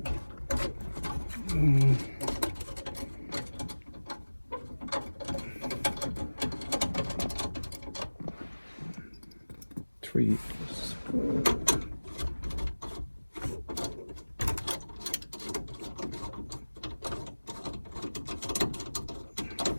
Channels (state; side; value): inverted; both; correlation -1.00